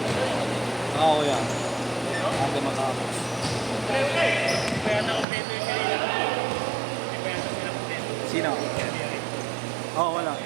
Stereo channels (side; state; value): left; drops out; at 5.2 s